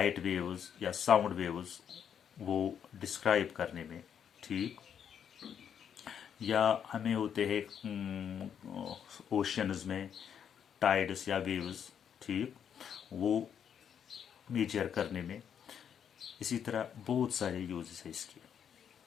वेव्स या साउंड वेव्स वो डिस्क्राइब करने में। ठीक। या हमें होते हैं ओशंस में टाइड्स या वेव्स, ठीक, वो मेजर करने में। इसी तरह बहुत सारे यूजेस है इसके।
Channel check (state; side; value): quieter; right; 8.3 dB